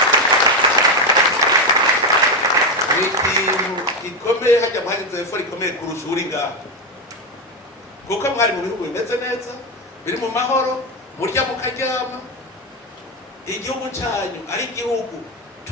ikintu gikomeye hajya muhagize efo rikomeye kurusha uri ngaho kuko mwari mu bihugu bimeze neza biri mu mahoro murya mukaryama igihugu cyanyu ari igihugu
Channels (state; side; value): normal; both; correlation 0.11